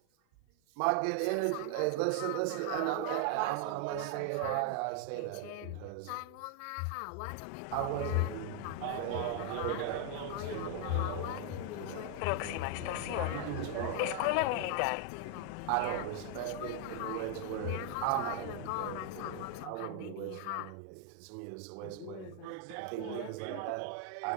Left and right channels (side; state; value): both; different; correlation 0.00